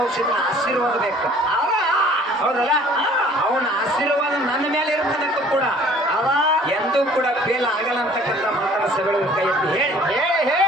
ರಕ್ಷಿತನ ಆಶೀರ್ವಾದ ಬೇಕು ಹೌದಲ್ಲ ಅವನ ಆಶೀರ್ವಾದ ನನ್ನ ಮೇಲೆ ಇರ್ತದಕ್ಕೂ ಕೂಡ ಅವ ಎಂದೂ ಕೂಡ ಫೇಲ್ ಆಗಲ್ಲ ಅಂತಕ್ಕಂಥ ಮಾತನ್ನ ಸಭೆಗಳಿಗೆ ಕೈ ಎತ್ತಿ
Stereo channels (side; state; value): both; normal; correlation 0.53